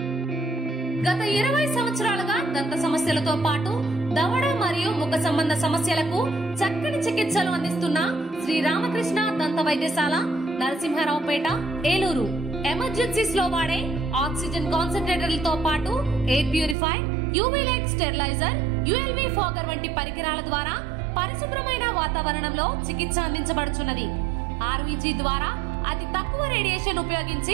గత 20 సంవత్సరాలుగా దంత సమస్యలతో పాటు దవడ మరియు ముఖ సంబంధ సమస్యలకు చక్కని చికిత్సలు అందిస్తున్న శ్రీ రామకృష్ణ దంత వైద్యశాల, నరసింహారావుపేట, ఏలూరు. ఎమర్జెన్సీస్ లో వాడే ఆక్సిజన్ కాన్సంట్రేటర్లతో పాటు air purify, UV light steriliser, ULV fogger వంటి పరికరాల ద్వారా పరిశుభ్రమైన వాతావరణంలో చికిత్స అందించబడుచున్నది. ఆర్వీజీ ద్వారా అతి తక్కువ రేడియేషన్ ఉపయోగించి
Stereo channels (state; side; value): drops out; left; at 16.8 s